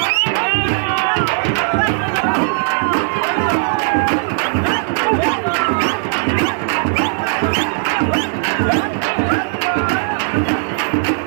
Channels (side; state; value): left; silent; 68 dB below the other